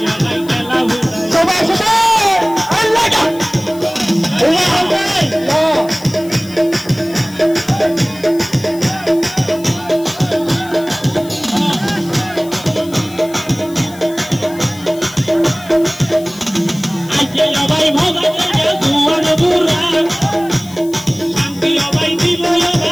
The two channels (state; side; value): noise; left; hiss, 19 dB below the sound